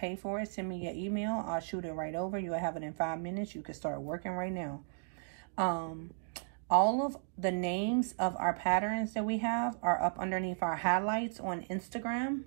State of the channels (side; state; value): left; silent; digital silence